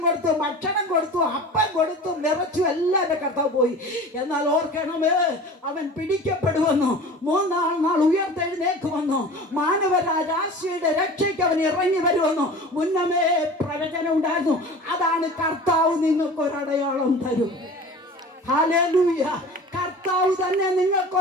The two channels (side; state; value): both; normal; correlation 0.38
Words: കൊടുത്തും ഭക്ഷണം കൊടുത്തും അപ്പം കൊടുത്തും നിറച്ചും എല്ലാം എന്റെ കർത്താവ് പോയി. എന്നാൽ ഓർക്കണമേ, അവൻ പിടിക്കപ്പെടുമെന്നു, മൂന്നാം നാൾ ഉയർത്തെഴുന്നേക്കുമെന്നു, മാനവരാശിയുടെ രക്ഷയ്ക്ക് അവൻ ഇറങ്ങി വരുമെന്നു മുന്നമേ പ്രവചനം ഉണ്ടായിരുന്നു. അതാണ് കർത്താവ് നിങ്ങൾക്കൊരടയാളം തരും. ഹല്ലേലൂയ. കർത്താവ് തന്നെ